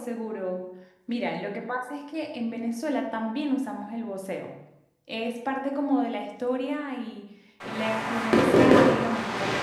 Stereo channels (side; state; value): both; identical; correlation 1.00